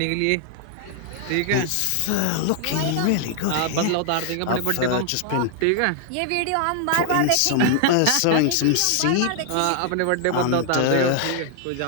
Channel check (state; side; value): different; both; correlation 0.00